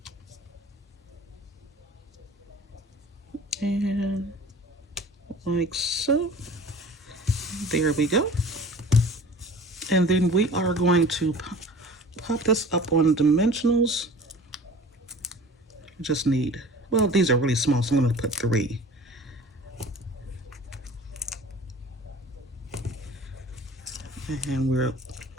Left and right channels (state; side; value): normal; both; correlation 0.43